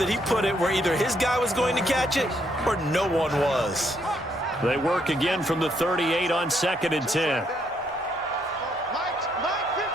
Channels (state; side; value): normal; both; correlation 0.73